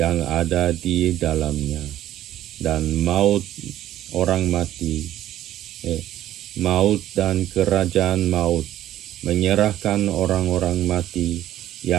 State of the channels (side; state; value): left; quieter; 12.8 dB